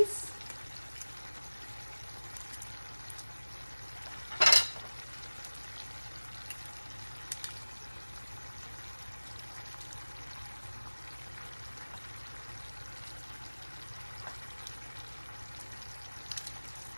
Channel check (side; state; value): both; inverted; correlation -1.00